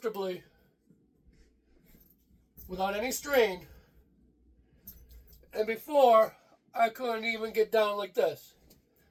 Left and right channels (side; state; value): both; identical; correlation 1.00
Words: without any strain. And before, I couldn't even get down like this.